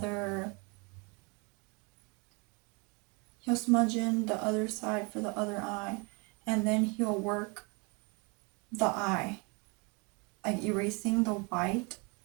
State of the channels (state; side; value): quieter; left; 31.1 dB